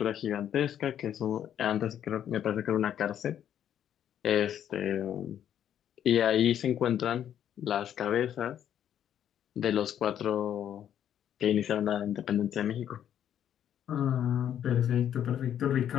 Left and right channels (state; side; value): quieter; right; 10.0 dB